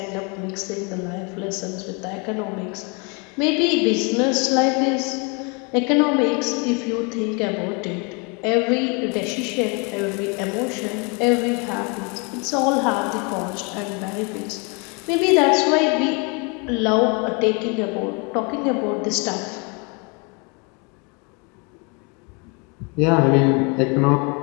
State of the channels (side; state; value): right; quieter; 32.3 dB